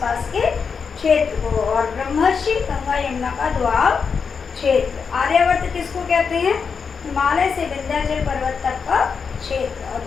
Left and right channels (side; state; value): right; quieter; 5.8 dB